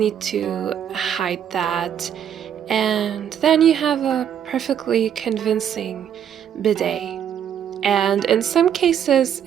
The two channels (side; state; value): left; quieter; 9.1 dB